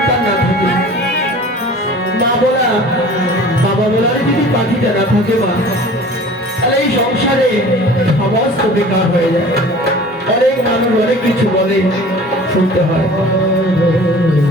না থাকে, মা বলা বাবা বলার যদি পাখিটা না থাকে মা, তাহলে এই সংসারে সমস্ত বেকার হয়ে যায়। অনেক মানুষ অনেক কিছু বলে, শুনতে হয়।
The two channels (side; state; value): both; normal; correlation 0.44